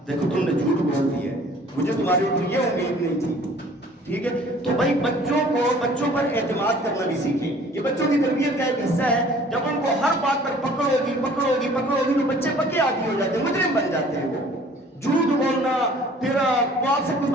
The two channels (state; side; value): normal; both; correlation 0.52